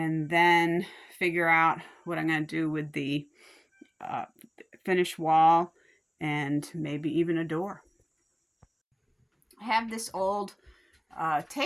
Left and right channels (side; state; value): both; identical; correlation 1.00